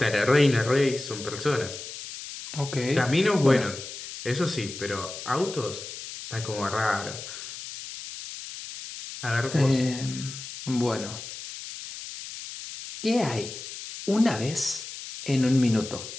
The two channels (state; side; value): noise; left; hiss, 11 dB below the sound